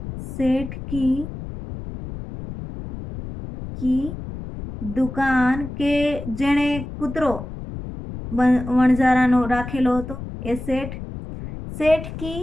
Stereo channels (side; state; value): left; noise; rumble, 10 dB below the sound